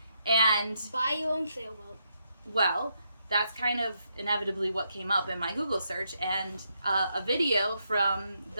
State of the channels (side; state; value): both; inverted; correlation -0.79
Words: And Buy your own sailboat. well, that's kind of inevitably what came up in my Google search, and a video from